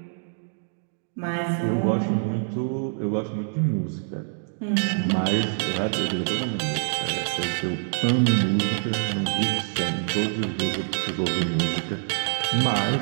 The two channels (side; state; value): left; silent; digital silence